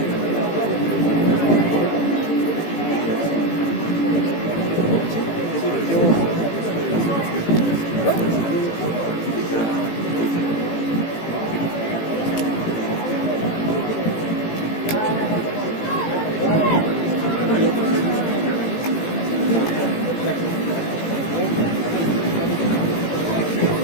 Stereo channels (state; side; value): late; right; 18 ms